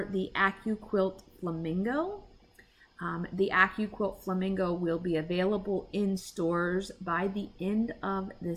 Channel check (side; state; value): both; identical; correlation 1.00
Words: the Accu Quilt Flamingo, the Accu Quilt Flamingo will be available in stores by the end of